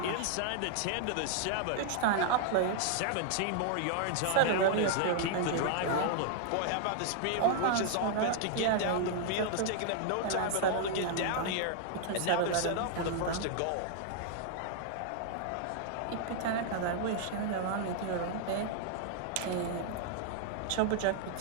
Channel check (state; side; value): different; both; correlation -0.01